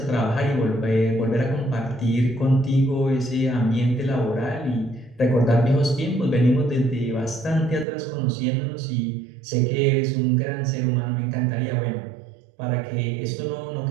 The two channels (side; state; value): left; drops out; at 7.9 s